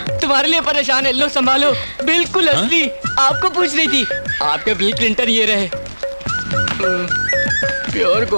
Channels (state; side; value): inverted; both; correlation -1.00